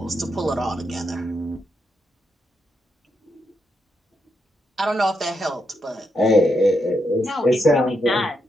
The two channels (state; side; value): normal; both; correlation 0.82